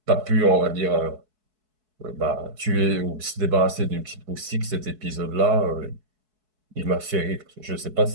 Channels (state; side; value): late; left; 4.7 ms